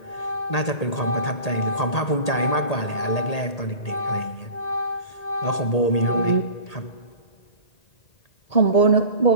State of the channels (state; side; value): late; right; 1.8 ms